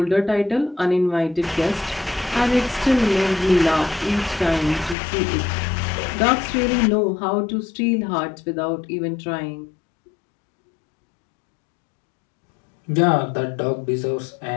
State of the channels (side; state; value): right; drops out; at 5.0 s